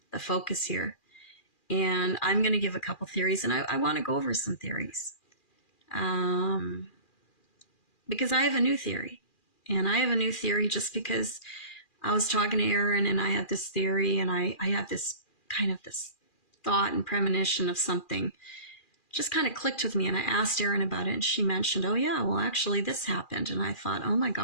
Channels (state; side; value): late; right; 2.4 ms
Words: the focus here. And I'm going to give a couple theories, and I want to go over some theories. Because I have a new theory. And I have a new theory just because I was talking to Aaron and I had this theory, and I had this kind of this thought and premonition of something just kind of clicked with me, and I asked Aaron about it, and she mentioned, oh yeah, well actually this happened. And I thought, oh my